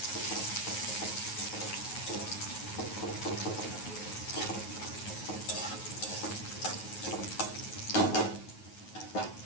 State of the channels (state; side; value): late; right; 9.3 ms